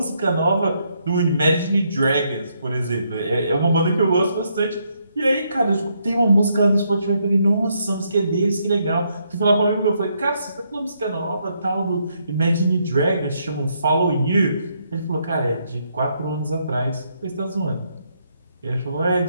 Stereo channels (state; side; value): inverted; both; correlation -0.75